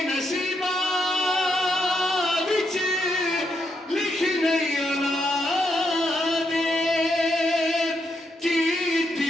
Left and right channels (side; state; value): both; normal; correlation 0.80